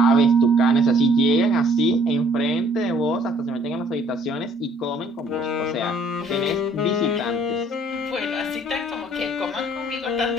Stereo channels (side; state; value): both; normal; correlation 0.60